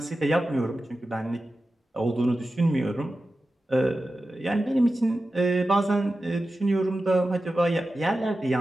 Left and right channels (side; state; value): both; normal; correlation 0.93